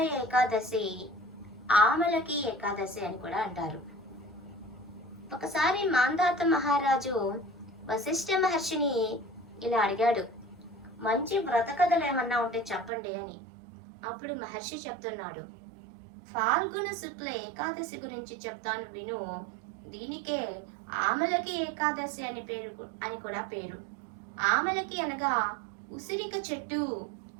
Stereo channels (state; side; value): drops out; left; at 12.9 s